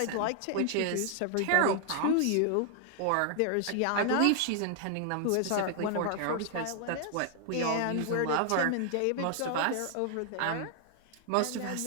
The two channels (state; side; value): different; both; correlation 0.00